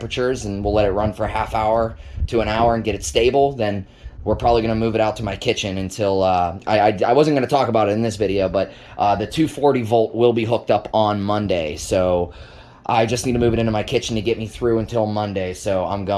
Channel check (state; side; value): identical; both; correlation 1.00